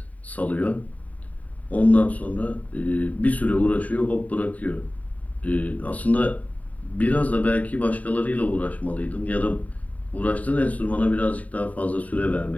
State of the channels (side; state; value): right; late; 0.070 ms